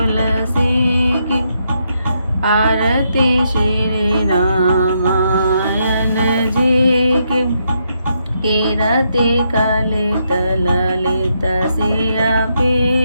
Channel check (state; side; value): inverted; both; correlation -0.78